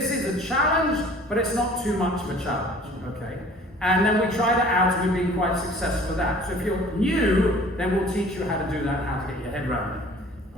is a challenge, but it's not too much of a challenge, okay? And then we tried it out, and we've been quite successful with that. So if you're new, then we'll teach you how to do that, how to get your head around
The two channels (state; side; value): normal; both; correlation 0.49